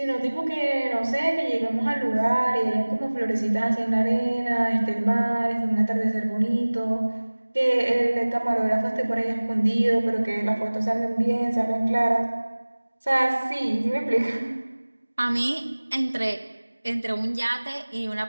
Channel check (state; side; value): inverted; both; correlation -1.00